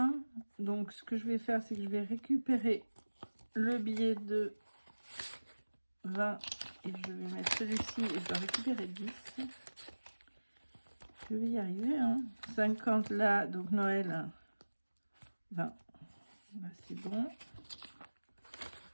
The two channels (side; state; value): both; inverted; correlation -1.00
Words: Donc ce que je vais faire, c'est que je vais récupérer le billet de 20 et je vais mettre celui-ci et je dois récupérer 10. Je vais y arriver, hein. 50 là, donc Noël, 20. Là, c'est bon.